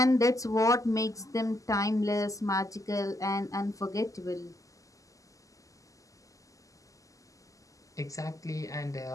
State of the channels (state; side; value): late; right; 0.16 ms